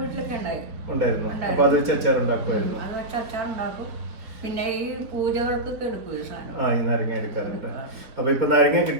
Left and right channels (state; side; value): late; left; 4.2 ms